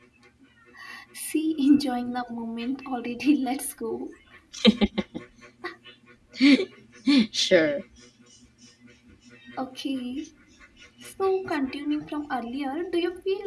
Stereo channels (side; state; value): both; identical; correlation 1.00